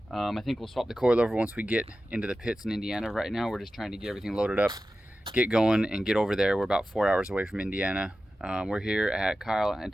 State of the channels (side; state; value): both; normal; correlation 0.94